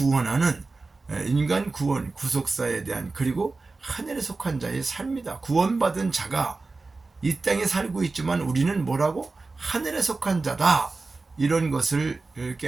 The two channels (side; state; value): left; quieter; 3.7 dB